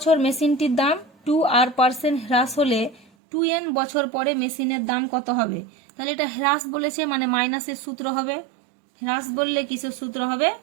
মেশিনটির দাম 2r% হ্রাস হলে 2n বছর পরে মেশিনের দাম কত হবে। তাহলে এটা হ্রাস বলেছে মানে মাইনাসের সূত্র হবে, হ্রাস বললে কিসের সূত্র হবে,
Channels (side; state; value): left; drops out; at 3.1 s